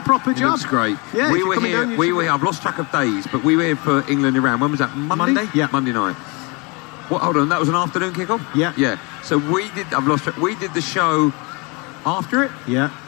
proper job. Looks great. Yeah. We were here. I've lost track of days, but we were here for England-Iran. When was that? Monday? Yeah. Monday night. What? Hold on. That was an afternoon kickoff. Yeah. Yeah. So we did. I've lost track. We did the show after it. Yeah.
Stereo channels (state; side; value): quieter; right; 29.2 dB